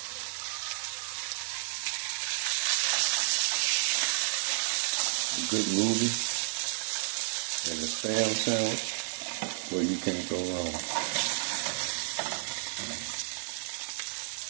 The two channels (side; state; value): left; silent; digital silence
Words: A good Ruby and a spam sandwich, well, you can't go wrong.